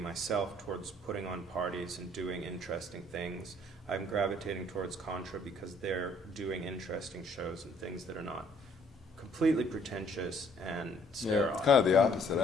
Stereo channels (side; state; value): both; normal; correlation 0.61